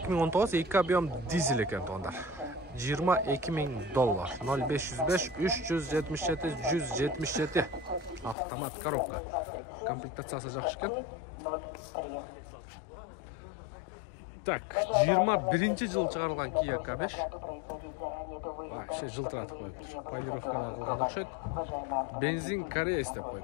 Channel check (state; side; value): drops out; right; at 8.3 s